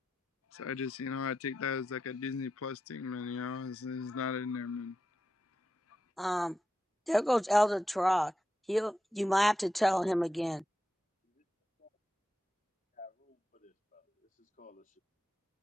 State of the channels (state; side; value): normal; both; correlation 0.88